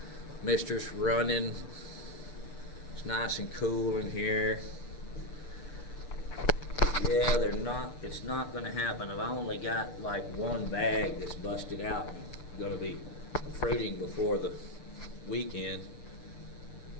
Mister's running. It's nice and cool in here. Yeah, it's not going to happen. I've only got like one bag that's busted out and going to be fruiting before the weekend.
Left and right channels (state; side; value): late; right; 6.8 ms